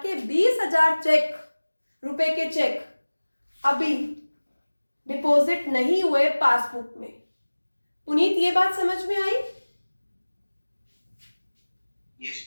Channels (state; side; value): inverted; both; correlation -1.00